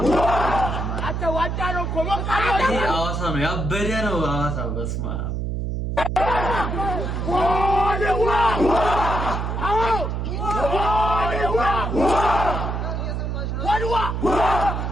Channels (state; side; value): noise; right; hum, 2 dB below the sound